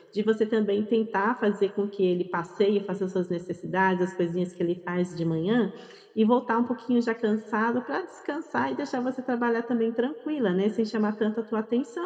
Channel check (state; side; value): identical; both; correlation 1.00